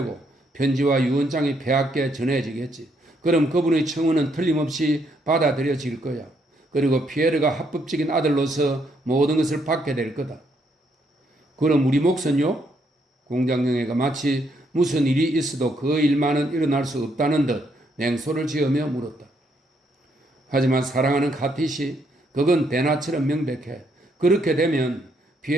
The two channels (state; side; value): normal; both; correlation 0.74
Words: 편지와 유언장이 폐하께 전해지겠지. 그럼 그분의 청원은 틀림없이 받아들여질 거야. 그리고 피에르가 합법적인 아들로서 모든 것을 받게 될 거다. 그럼 우리 몫은요? 공장영애가 마치 무슨 일이 있어도 그 일만은 일어날 수 없다는 듯 냉소를 지으며 물었다. 하지만 사랑하는 카티시, 그건 대나처럼 명백해. 그렇게 되면